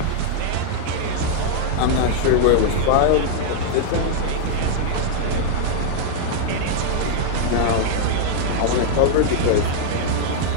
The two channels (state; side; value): different; both; correlation -0.01